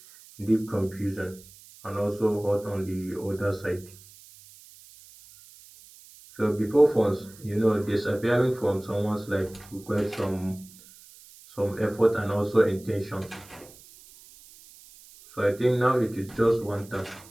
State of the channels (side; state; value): right; noise; hiss, 22 dB below the sound